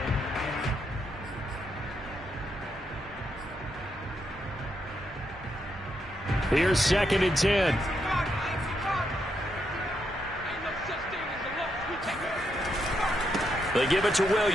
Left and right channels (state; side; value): normal; both; correlation 0.80